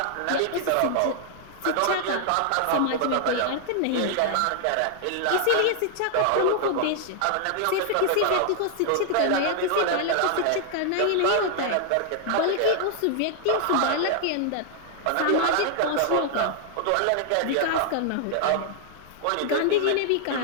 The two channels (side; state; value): both; different; correlation 0.00